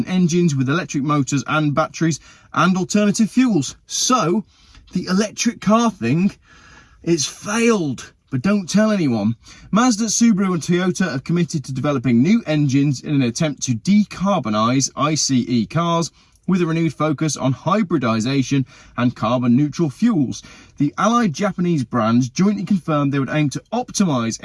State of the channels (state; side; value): identical; both; correlation 1.00